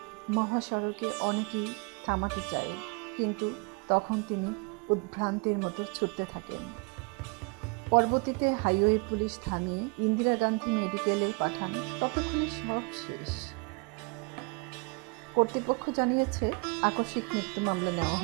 মহাসড়কে অনেকেই থামাতে চায়, কিন্তু তখন তিনি উদ্ভ্রান্তের মতো ছুটতে থাকেন। পরবর্তীতে হাইওয়ে পুলিশ থামিয়ে ইন্দিরা গান্ধী মেডিকেলে পাঠান। ততক্ষণে সব শেষ। কর্তৃপক্ষ জানিয়েছে আকস্মিক মৃত্যু মামলা নেওয়া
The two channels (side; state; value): left; quieter; 33.0 dB